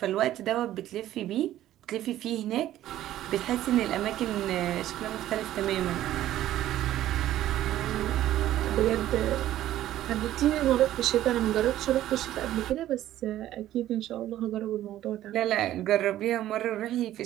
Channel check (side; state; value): left; quieter; 13.3 dB